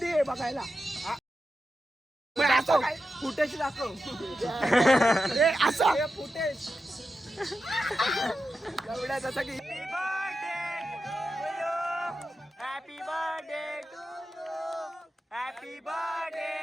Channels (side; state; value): both; normal; correlation 0.90